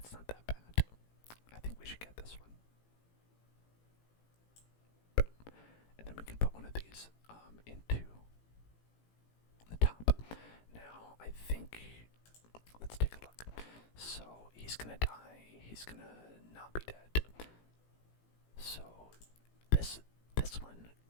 not that bad. I think we should get this one. And then we can put one of these into the top. Now, I think, let's take a look. So, he's gonna die, he's gonna not be dead. So, this one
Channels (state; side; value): late; right; 18 ms